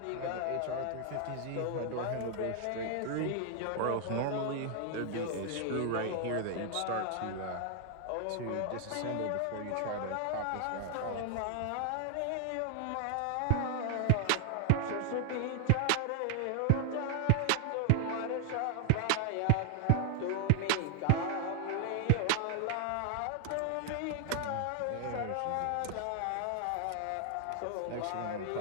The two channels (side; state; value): both; different; correlation 0.00